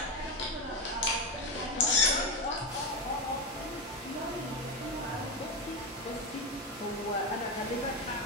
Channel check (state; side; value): normal; both; correlation 0.12